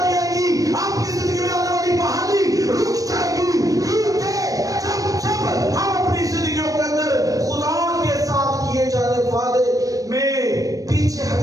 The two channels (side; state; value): left; late; 0.17 ms